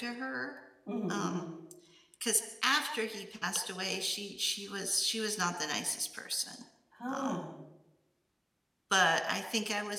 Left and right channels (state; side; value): identical; both; correlation 1.00